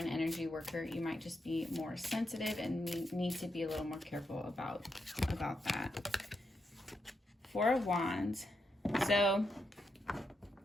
energy worker, you might just be more sensitive and need to be a little more careful about that. 4 of Wands. So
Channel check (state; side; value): normal; both; correlation 0.83